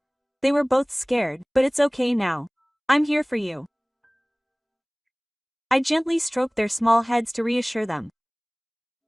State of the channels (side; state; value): both; identical; correlation 1.00